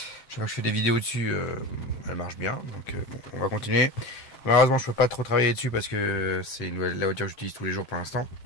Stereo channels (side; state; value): right; late; 7.5 ms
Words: Je sais pas que je fais des vidéos dessus, elle marche bien. Donc bon, on va continuer. Malheureusement, je peux pas trop travailler dessus parce que c'est la voiture que j'utilise tous les jours pour l'instant.